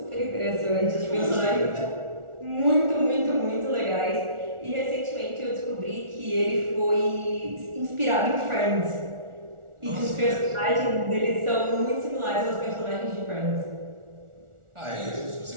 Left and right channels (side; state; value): left; late; 1.4 ms